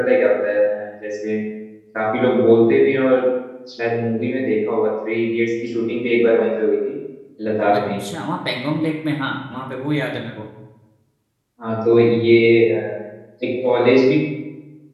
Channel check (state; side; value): identical; both; correlation 1.00